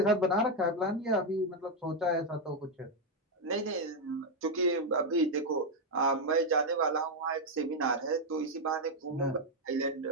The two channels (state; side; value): normal; both; correlation 0.02